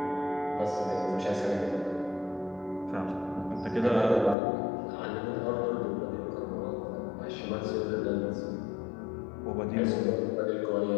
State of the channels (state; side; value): drops out; right; at 4.4 s